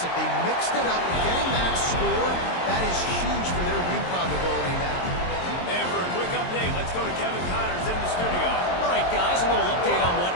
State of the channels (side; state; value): right; late; 22 ms